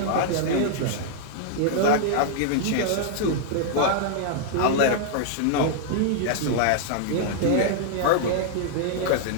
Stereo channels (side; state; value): both; different; correlation -0.01